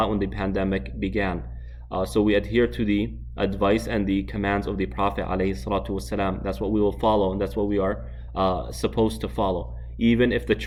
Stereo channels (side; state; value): both; identical; correlation 1.00